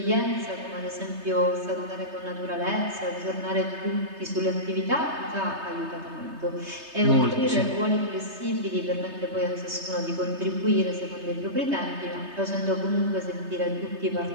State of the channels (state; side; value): late; left; 3.3 ms